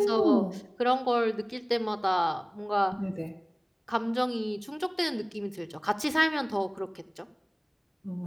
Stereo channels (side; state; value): both; identical; correlation 1.00